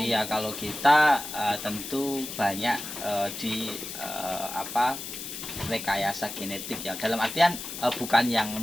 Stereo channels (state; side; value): noise; left; hiss, 8 dB below the sound